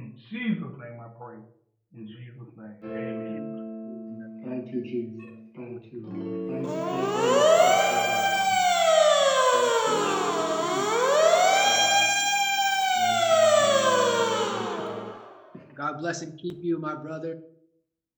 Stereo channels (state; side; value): identical; both; correlation 1.00